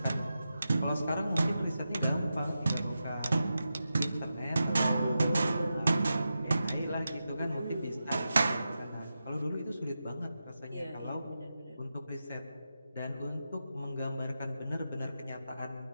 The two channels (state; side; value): inverted; both; correlation -0.90